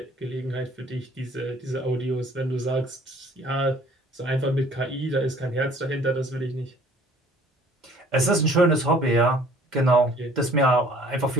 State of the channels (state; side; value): normal; both; correlation 0.54